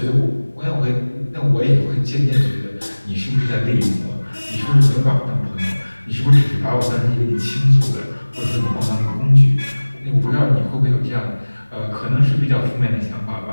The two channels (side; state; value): both; inverted; correlation -1.00